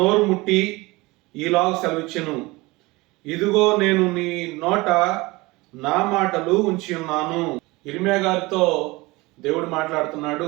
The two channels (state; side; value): quieter; left; 22.5 dB